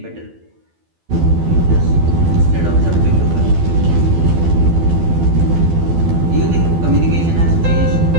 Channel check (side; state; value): left; late; 12 ms